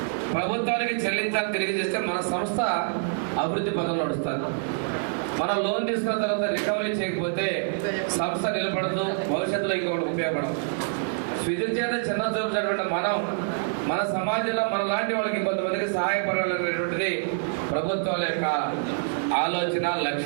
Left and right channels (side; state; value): left; silent; digital silence